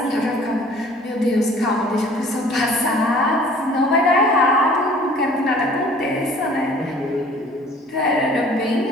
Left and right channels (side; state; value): both; normal; correlation 0.51